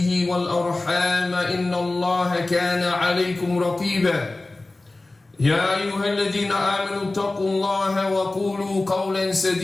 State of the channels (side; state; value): right; quieter; 3.0 dB